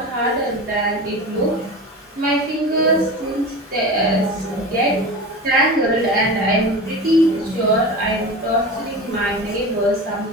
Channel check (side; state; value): both; normal; correlation 0.30